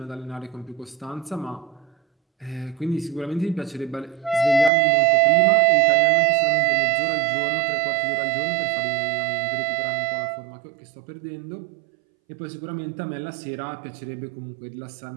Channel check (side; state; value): left; drops out; at 4.7 s